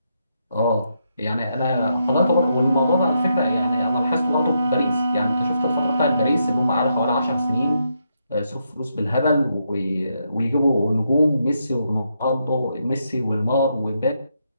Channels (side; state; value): both; inverted; correlation -0.80